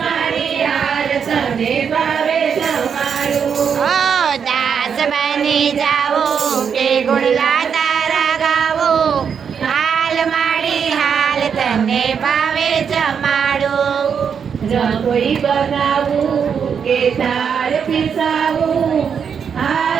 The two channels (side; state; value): left; quieter; 7.0 dB